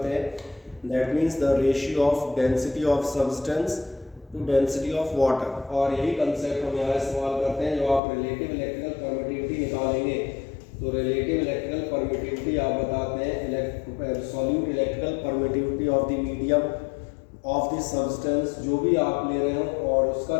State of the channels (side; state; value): right; drops out; at 8.0 s